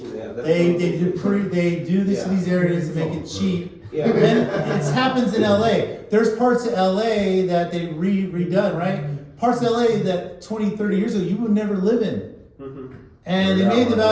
Yeah, that's They do this in these areas to make it cheap. Yeah. Then it happens in LA. There's parts of LA that they redone, right? Parts of LA that 20, 30 years ago you would never live in. Mhm. And they made the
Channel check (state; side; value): identical; both; correlation 1.00